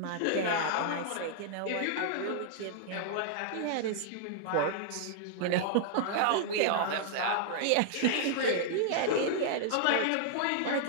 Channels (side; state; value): both; different; correlation -0.01